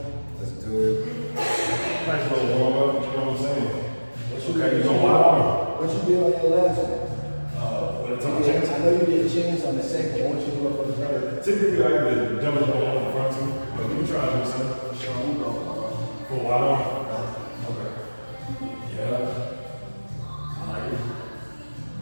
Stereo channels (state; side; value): inverted; both; correlation -1.00